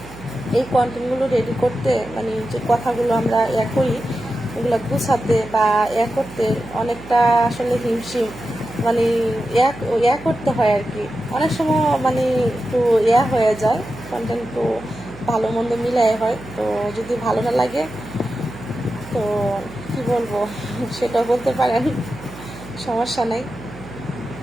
এই কন্টেন্টগুলো রেডি করতে, যে কথাগুলো আমরা করি এগুলো গুছাতে বা করতে অনেকটা আসলে হিমশিম, করতে হয় আর কি। অনেক সময় একটু হয়ে যায়, কন্টেন্ট একটু ভালো মন্দ মিলাই হয়। তো যদি ভালো না লাগে তো কি বলবো সেটা বলতে পারেন, সমস্যা নেই।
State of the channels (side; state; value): right; noise; hum, 16 dB below the sound